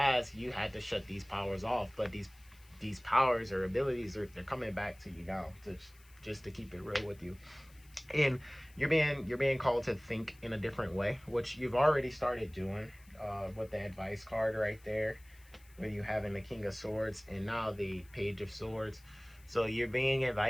you had to shut these powers off, but these powers or abilities they're coming back to you now, to just to keep it real with you. And you're being called to think in a different way, which you've already started doing, with the advice card right there, where you having the King of Swords and now the Page of Swords. So you're being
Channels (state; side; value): noise; left; hiss, 27 dB below the sound